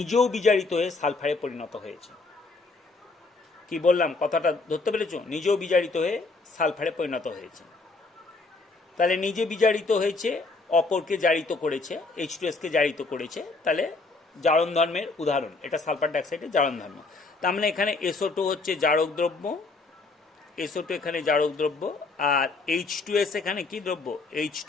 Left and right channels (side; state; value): right; quieter; 3.7 dB